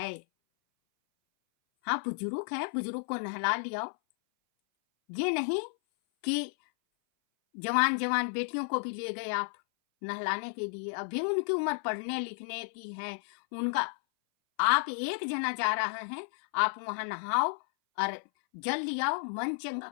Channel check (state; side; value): silent; right; 56 dB below the other